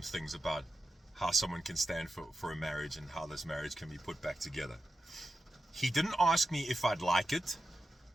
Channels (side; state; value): both; normal; correlation 0.90